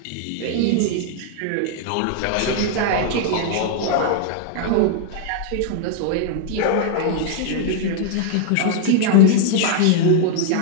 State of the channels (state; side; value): different; both; correlation 0.00